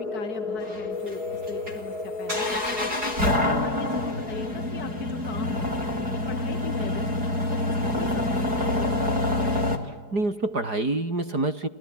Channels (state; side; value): late; left; 4.7 ms